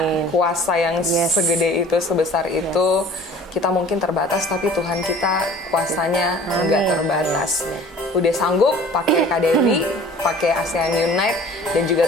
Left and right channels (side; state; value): both; normal; correlation 0.47